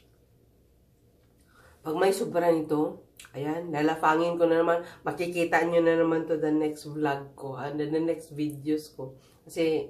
Pag may sobra nito, ayan, lalafangin ko na naman. Makikita nyo na naman to the next vlog ko, and the next videos ko. Kasi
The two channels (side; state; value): both; identical; correlation 1.00